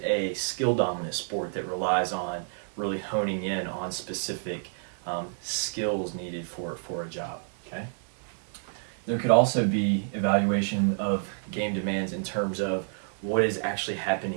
a skill-dominant sport that relies on really honing in on specific skills needed for a job? Okay. There could also be evaluation of game demands in terms of what is actually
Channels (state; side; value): silent; left; 59 dB below the other